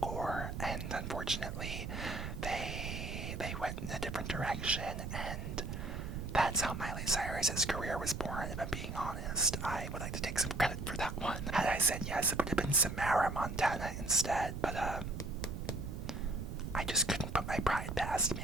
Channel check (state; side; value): noise; right; rumble, 5 dB below the sound